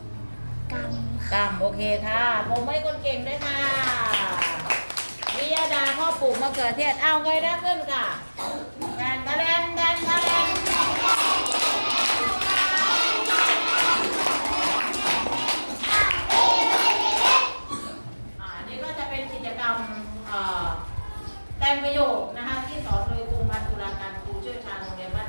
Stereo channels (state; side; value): inverted; both; correlation -1.00